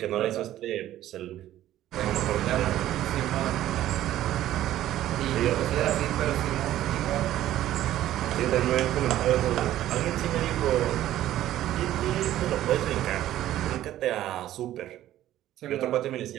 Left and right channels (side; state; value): left; quieter; 13.3 dB